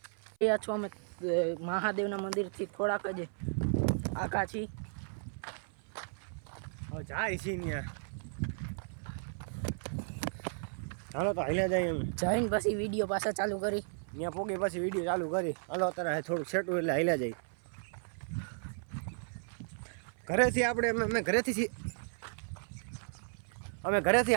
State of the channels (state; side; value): silent; left; 55 dB below the other